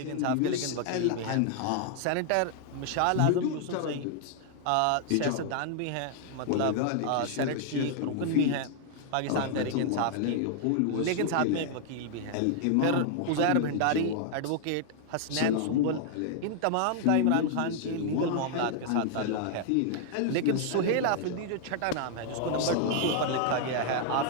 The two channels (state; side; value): different; both; correlation 0.00